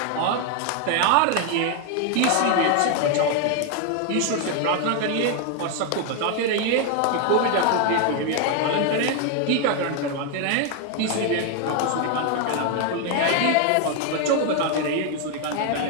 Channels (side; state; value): both; different; correlation 0.00